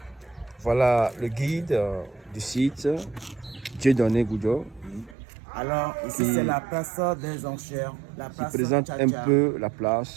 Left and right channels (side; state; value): left; drops out; at 5.2 s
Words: Voilà le guide du site, Dieudonné Goudio. Alors, ici c'est la place des enchères. La Qui place présente Tcha-Tcha. un peu la